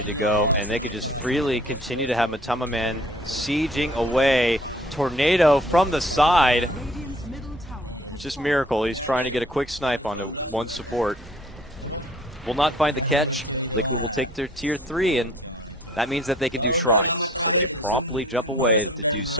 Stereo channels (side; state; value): both; normal; correlation 0.53